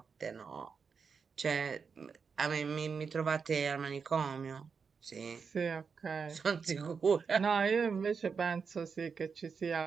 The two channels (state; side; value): quieter; left; 5.7 dB